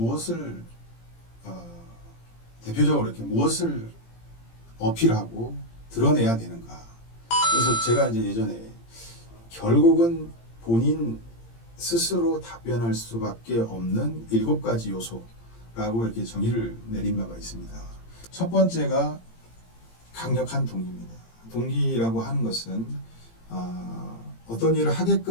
대표적으로 이렇게 무엇을 어필하고 드러내야 되는가. 그래서 제가 이제 예전에 결국은 본인 스스로 답변할 수밖에 없는 7가지 요소라고 이렇게 정의를 내린 바가 있습니다. 첫 번째가 강력한 동기입니다. 동기라고 하는 것은 어떤 일을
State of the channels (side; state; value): right; late; 18 ms